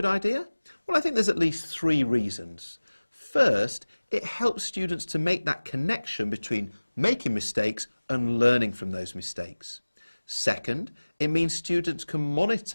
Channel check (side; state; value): both; inverted; correlation -1.00